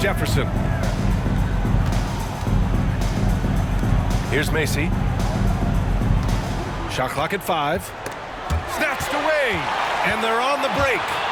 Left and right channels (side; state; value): both; identical; correlation 1.00